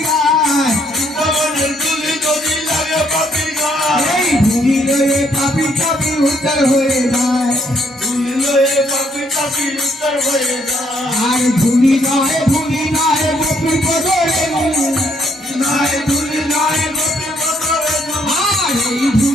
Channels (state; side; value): normal; both; correlation 0.69